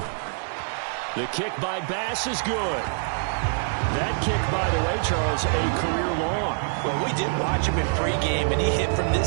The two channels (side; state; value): left; silent; digital silence